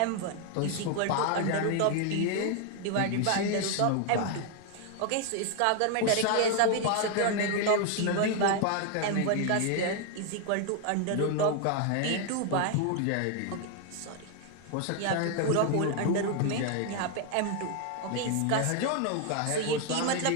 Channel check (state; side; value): different; both; correlation 0.00